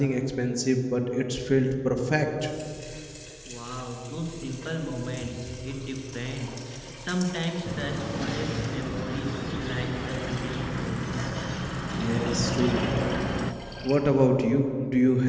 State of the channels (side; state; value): both; identical; correlation 1.00